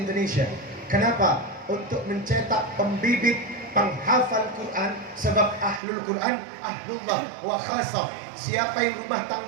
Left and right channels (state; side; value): drops out; left; at 5.8 s